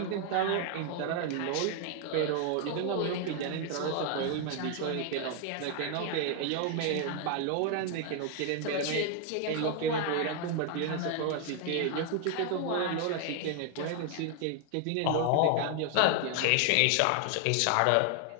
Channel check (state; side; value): different; both; correlation 0.00